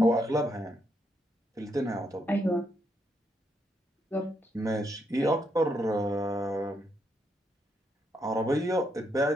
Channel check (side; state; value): both; normal; correlation 0.78